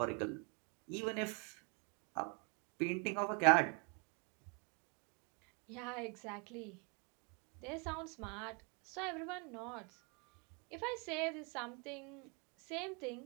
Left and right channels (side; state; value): left; quieter; 34.8 dB